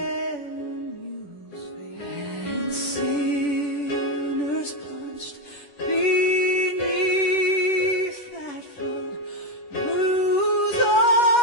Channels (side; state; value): right; late; 10 ms